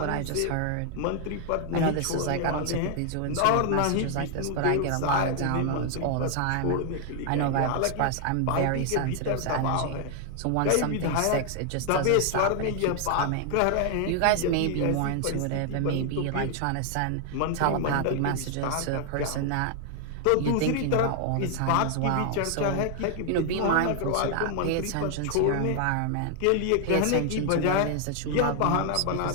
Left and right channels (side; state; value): both; different; correlation 0.00